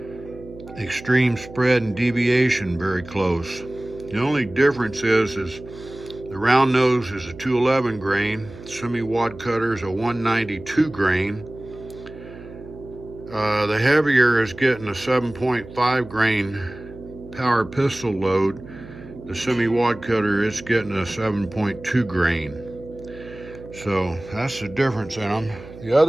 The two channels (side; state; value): right; noise; hum, 16 dB below the sound